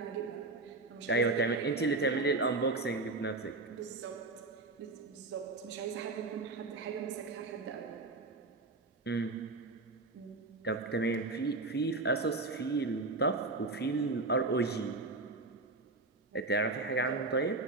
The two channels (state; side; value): quieter; left; 3.3 dB